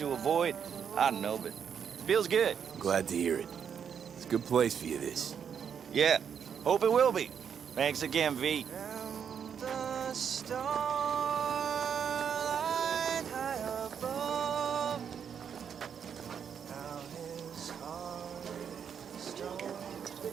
avoid. I don't know, but feels good. Glad to hear it. It's a good place for you, this. Yeah, hope it will be. Thanks again, V.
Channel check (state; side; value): quieter; left; 7.7 dB